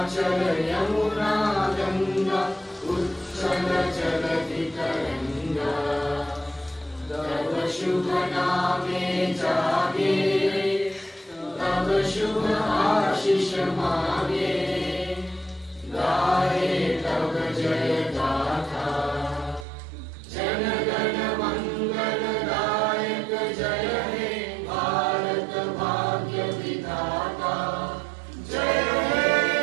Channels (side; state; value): left; drops out; at 19.7 s